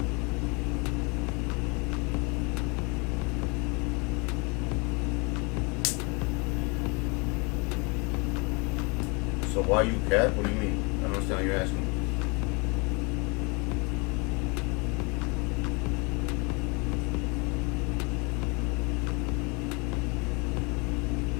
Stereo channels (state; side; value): quieter; right; 30.7 dB